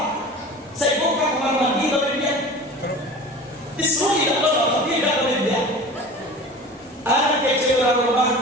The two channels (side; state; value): both; normal; correlation 0.37